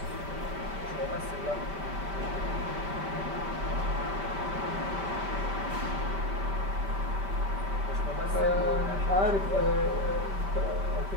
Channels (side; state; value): left; late; 5.1 ms